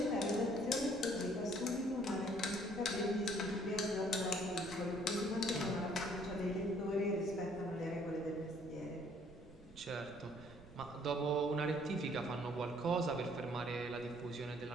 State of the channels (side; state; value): right; noise; rumble, 22 dB below the sound